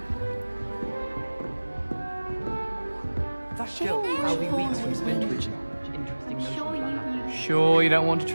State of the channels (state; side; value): inverted; both; correlation -1.00